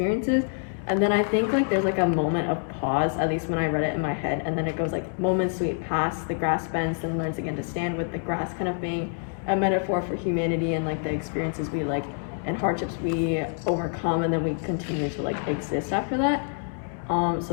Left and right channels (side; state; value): right; silent; 61 dB below the other